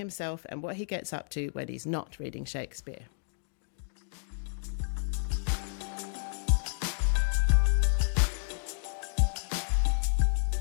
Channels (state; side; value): silent; right; digital silence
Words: and what he gets up to when he's not reading Shakespeare.